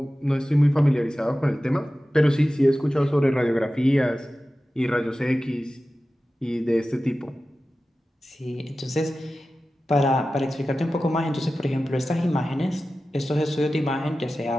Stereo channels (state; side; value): normal; both; correlation 0.95